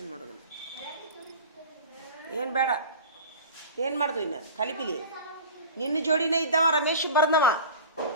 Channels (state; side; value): inverted; both; correlation -0.36